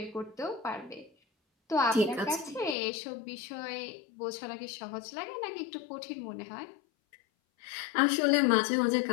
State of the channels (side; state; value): right; drops out; at 2.8 s